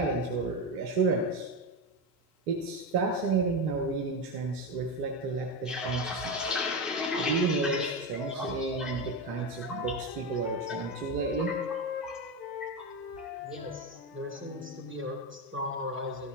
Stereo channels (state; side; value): normal; both; correlation 0.15